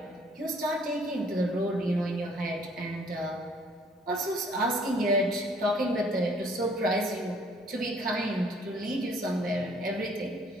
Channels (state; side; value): normal; both; correlation 0.59